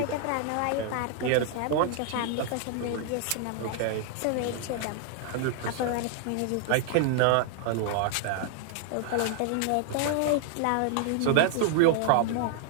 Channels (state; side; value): different; both; correlation -0.01